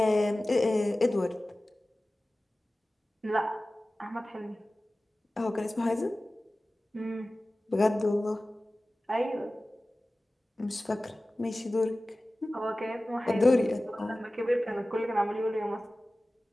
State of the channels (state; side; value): normal; both; correlation 0.97